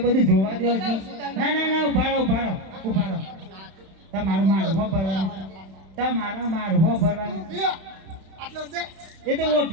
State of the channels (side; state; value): left; late; 31 ms